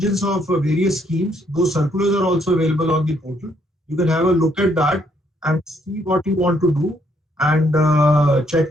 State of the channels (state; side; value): normal; both; correlation 0.70